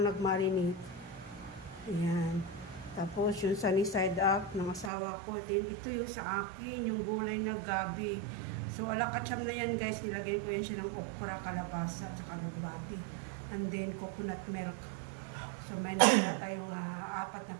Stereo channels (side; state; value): left; drops out; at 4.9 s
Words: nag-marinate. Ayan. Tapos yung sunny side up ng asawa ko. Then ito yung sa akin, yung gulay na gabi. So alakacham na yan guys. Nilagyan ko yan siya ng okra, kalabasa, at saka lubati. And then coconut milk. So may nakita tayong 4 na